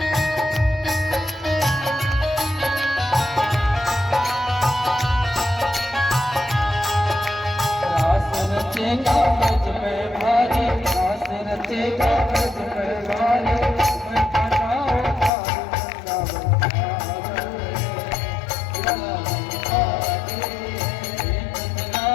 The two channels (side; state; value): right; drops out; at 15.3 s